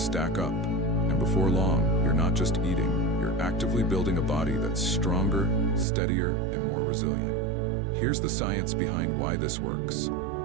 stack up, and before long, you're not just eating, you're actively building a body that's stronger, steadier, and more resilient. Here's the science behind why this works.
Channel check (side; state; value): left; drops out; at 5.9 s